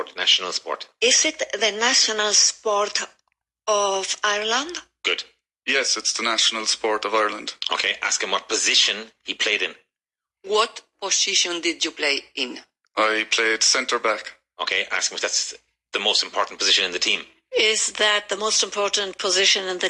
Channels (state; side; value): identical; both; correlation 1.00